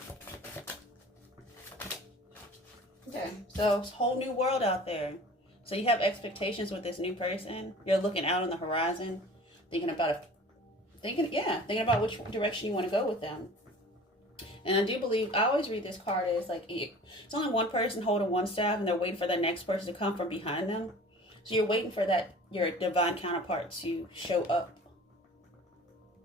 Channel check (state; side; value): normal; both; correlation 0.44